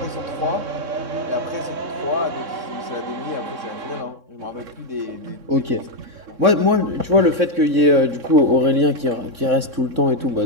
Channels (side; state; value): left; late; 3.6 ms